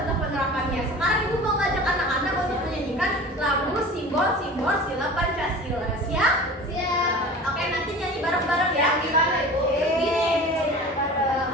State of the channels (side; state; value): both; normal; correlation 0.38